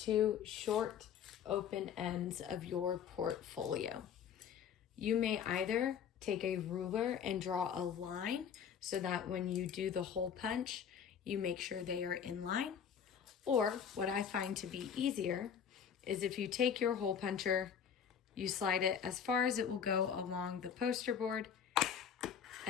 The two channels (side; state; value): right; quieter; 7.8 dB